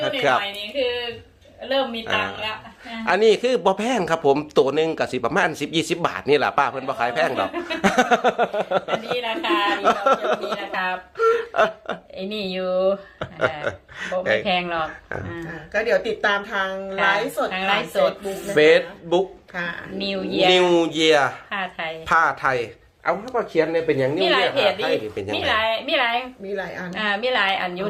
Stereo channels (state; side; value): identical; both; correlation 1.00